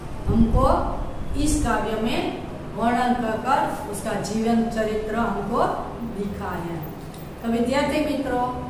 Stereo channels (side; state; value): both; identical; correlation 1.00